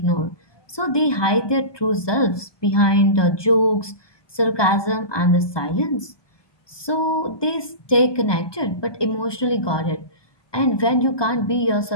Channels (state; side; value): late; right; 1.2 ms